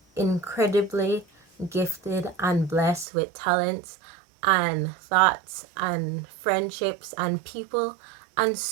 incredibly gifted and blessed with talents and thoughts and friendships and people and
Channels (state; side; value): drops out; left; at 3.1 s